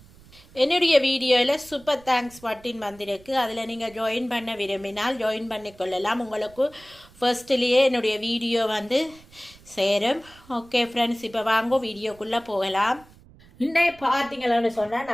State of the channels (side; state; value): right; noise; rumble, 24 dB below the sound